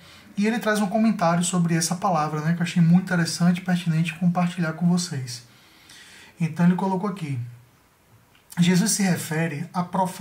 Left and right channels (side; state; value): both; identical; correlation 1.00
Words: E ele traz um comentário sobre essa palavra, que eu achei muito interessante e pertinente compartilhar com vocês. Então ele colocou aqui: Jesus se refere à